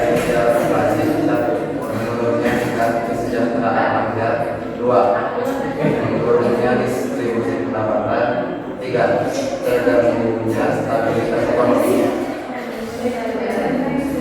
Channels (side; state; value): both; identical; correlation 1.00